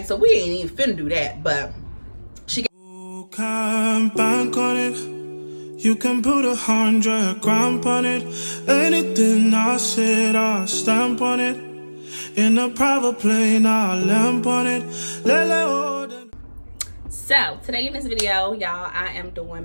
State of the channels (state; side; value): inverted; both; correlation -1.00